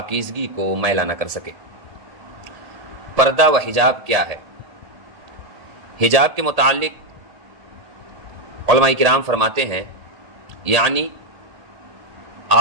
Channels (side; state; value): left; late; 1.8 ms